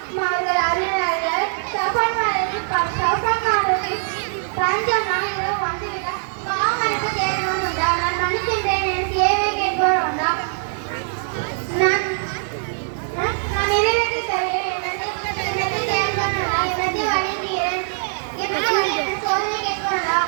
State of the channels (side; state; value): left; silent; digital silence